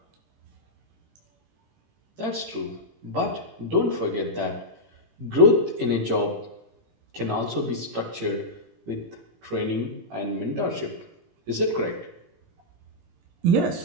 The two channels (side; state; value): left; late; 18 ms